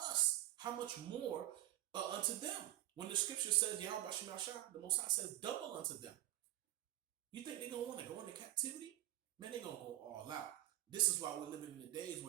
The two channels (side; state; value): left; quieter; 15.4 dB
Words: How much more unto them? When the scripture says, Yahweh Shemashah, the Most High says, double unto them. You think they're gonna want to go into captivity? Man, they're gonna go all out. This is why we're living in the days